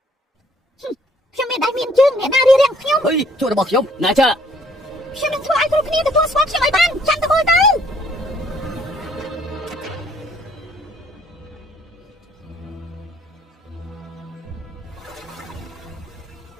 ខ្ញុំមានដៃមានជើងអ្នកណារៀបរៀងខ្ញុំអុយជួយរបស់ខ្ញុំណាចាខ្ញុំនឹងធ្វើឲ្យគ្រប់គ្នាទទួលស្គាល់ខ្ញុំឲ្យបានចាំទៅមើលទៅ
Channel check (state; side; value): normal; both; correlation 0.62